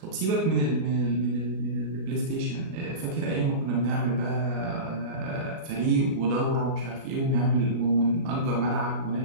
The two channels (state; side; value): late; left; 37 ms